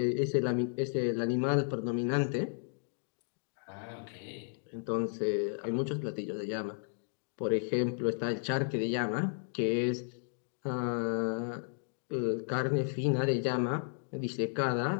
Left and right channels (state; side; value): silent; right; 55 dB below the other